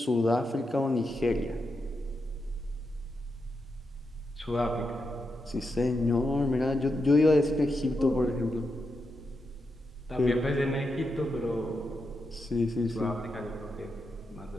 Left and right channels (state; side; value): normal; both; correlation 0.86